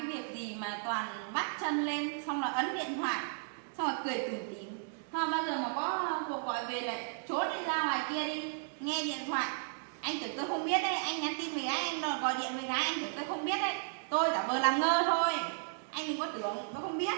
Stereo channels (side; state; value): left; silent; digital silence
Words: việc gì mà toàn bắt chân lên xong là ấn điện thoại xong rồi cười tủm tỉm. Thôi bao giờ mà có cuộc gọi về lại trốn đi ra ngoài kia đi nghe điện thoại. Anh tưởng tôi không biết đấy, anh nhắn tin với gái, anh gọi điện với gái, anh tưởng tôi không biết đấy. Tôi giả vờ làm ngơ thôi. Anh đừng có tưởng tôi không biết.